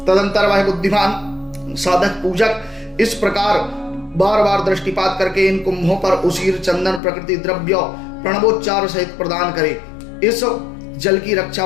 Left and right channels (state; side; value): drops out; right; at 7.0 s